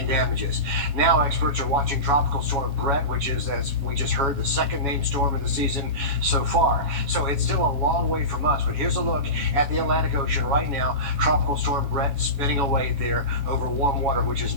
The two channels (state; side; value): late; left; 7.2 ms